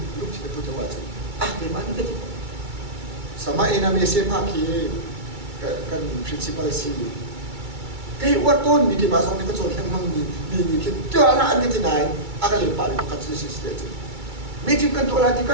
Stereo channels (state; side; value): late; left; 2.3 ms